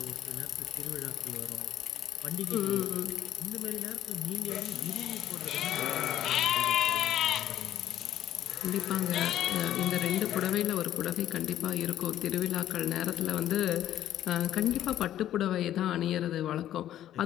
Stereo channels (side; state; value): right; quieter; 12.0 dB